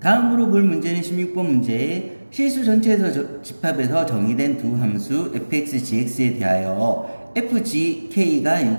볼 문제는 16번 문제. 실수 전체에서 집합에서 정의된 두 함수 fx, gx에 대하여 fgk가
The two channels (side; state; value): both; inverted; correlation -1.00